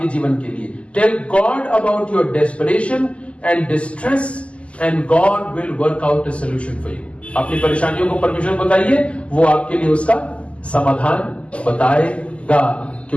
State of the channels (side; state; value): right; late; 0.059 ms